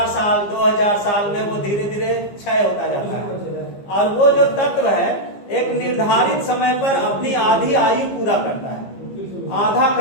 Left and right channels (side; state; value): right; late; 15 ms